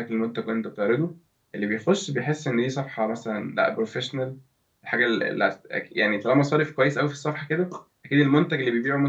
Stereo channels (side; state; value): both; identical; correlation 1.00